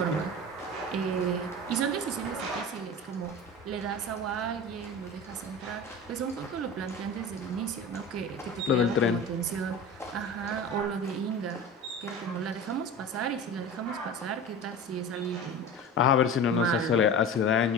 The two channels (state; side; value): normal; both; correlation 0.33